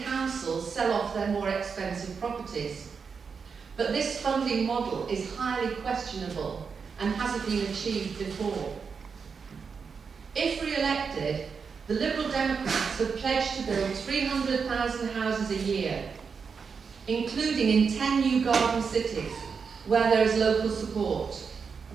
councils sell off their more expensive properties. But this funding model is highly questionable and hasn't been achieved before. If re-elected, the Liberal Democrats have pledged to build 300,000 houses a year, including in 10 new garden cities where there is local support.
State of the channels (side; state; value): left; quieter; 5.7 dB